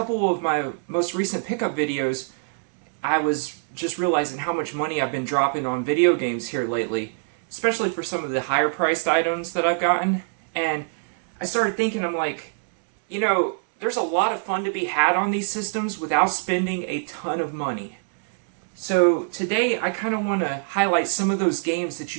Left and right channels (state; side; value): silent; left; digital silence